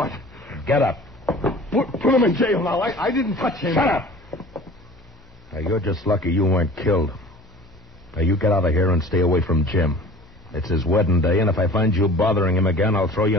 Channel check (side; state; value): both; normal; correlation 0.44